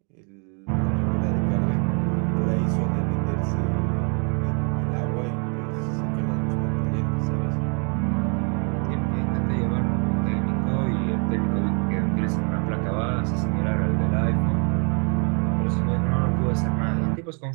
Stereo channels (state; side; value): quieter; left; 37.1 dB